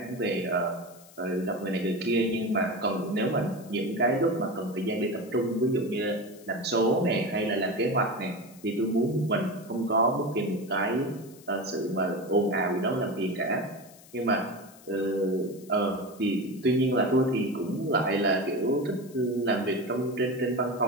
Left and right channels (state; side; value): noise; left; hiss, 23 dB below the sound